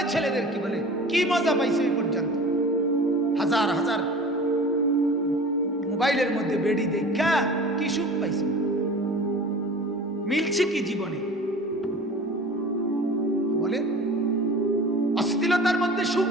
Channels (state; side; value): normal; both; correlation 0.40